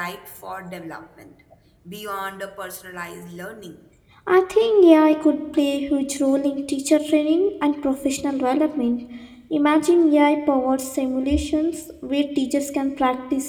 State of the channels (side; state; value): both; identical; correlation 1.00